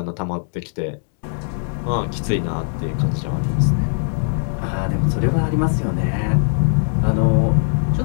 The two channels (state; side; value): silent; right; digital silence